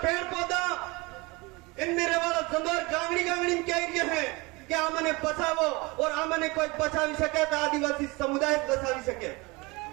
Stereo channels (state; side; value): quieter; left; 25.0 dB